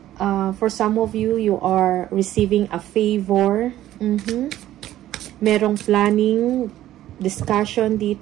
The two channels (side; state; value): left; quieter; 13.4 dB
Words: For some of you, you are receiving a favor. Merong planning, discussion